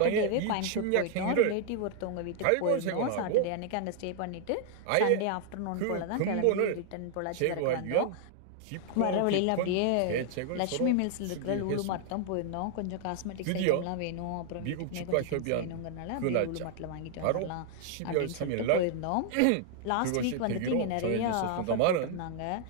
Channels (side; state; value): both; different; correlation 0.00